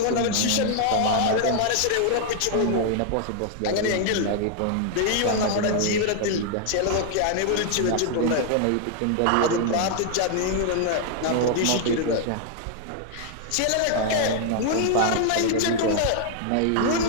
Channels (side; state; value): both; different; correlation 0.00